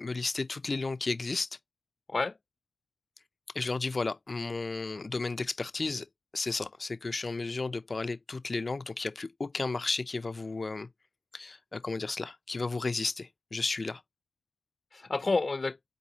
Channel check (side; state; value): right; quieter; 3.2 dB